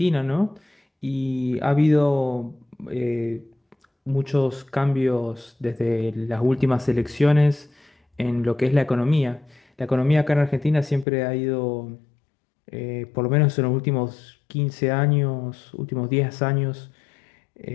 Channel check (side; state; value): right; drops out; at 11.1 s